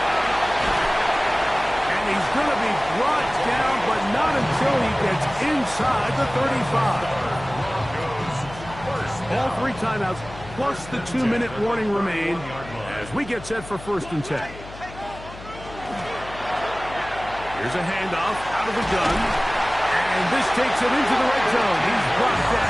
And he's going to be brought down, but not until he gets inside the 35. All 3 timeouts, plus the 2-minute warning remain as we get set for 1st and 10. Here's a handoff out of the gun. And this takes him into the red zone. He's brought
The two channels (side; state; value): left; noise; hum, 16 dB below the sound